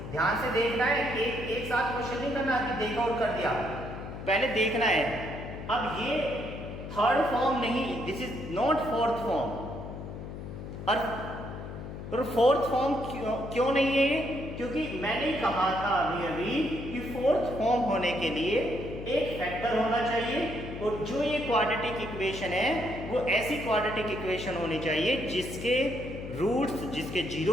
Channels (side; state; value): left; noise; hum, 9 dB below the sound